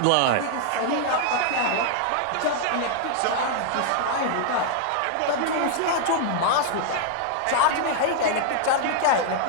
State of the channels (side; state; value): both; different; correlation 0.00